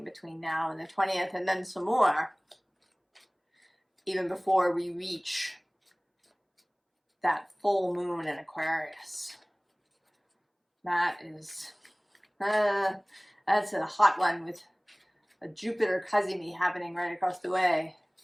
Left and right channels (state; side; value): identical; both; correlation 1.00